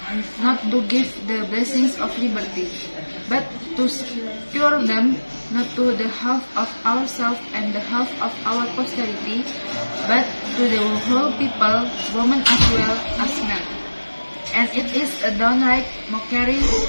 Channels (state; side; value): inverted; both; correlation -1.00